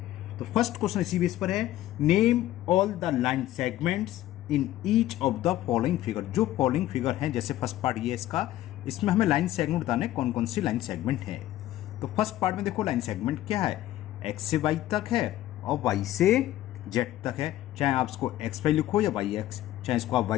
तो फर्स्ट क्वेश्चन इसी बेस पर है, name all the line segments in each of the following figure. जो फॉलोइंग फिगर है, जैसे फर्स्ट पार्ट ये इसका, इसमें हमें लाइन सेगमेंट बताने कौन कौन सी लाइन सेगमेंट है. तो फर्स्ट पार्ट में देखो लाइन सेगमेंट क्या है, एक्स से वाई तक है और वाई से जेड तक है. चाहे आप इसको एक्स वाई लिखो या वाई एक्स, चाहे इसको आप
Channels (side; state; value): right; quieter; 14.3 dB